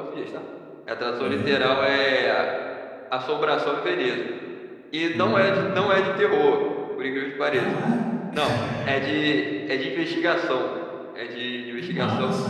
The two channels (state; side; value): identical; both; correlation 1.00